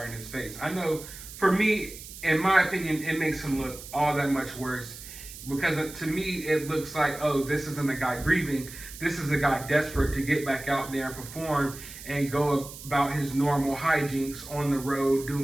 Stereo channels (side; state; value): right; noise; hiss, 14 dB below the sound